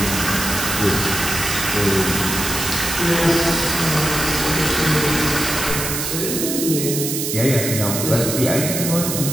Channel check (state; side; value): noise; right; hiss, 2 dB below the sound